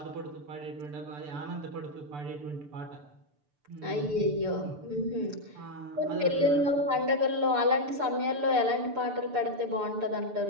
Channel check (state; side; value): late; left; 6.8 ms